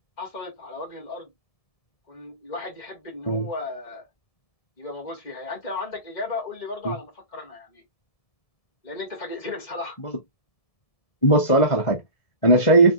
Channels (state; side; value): late; right; 1.7 ms